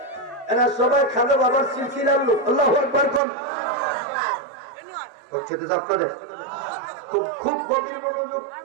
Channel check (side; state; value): left; drops out; at 3.2 s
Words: এরা সবাই খাজা বাবার সিলসিলার লোক। আল্লাহু আকবার। হচ্ছে তো আপনাদের খুব খুব গভীর মনোযোগ।